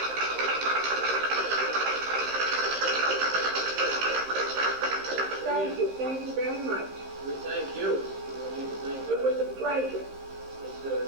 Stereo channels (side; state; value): left; late; 15 ms